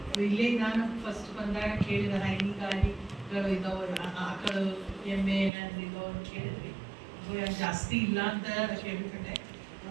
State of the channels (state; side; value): drops out; left; at 5.5 s